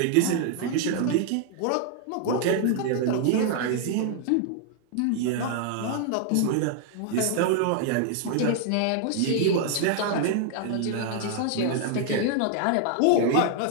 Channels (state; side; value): different; both; correlation 0.00